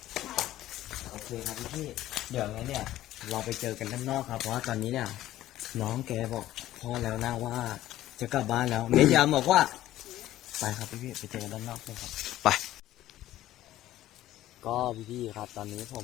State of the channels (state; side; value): quieter; right; 14.2 dB